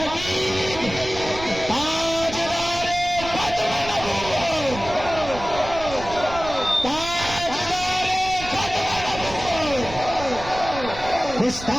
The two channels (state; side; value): noise; right; rumble, 12 dB below the sound